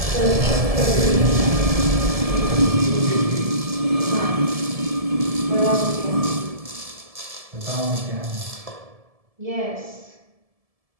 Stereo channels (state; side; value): late; left; 1.7 ms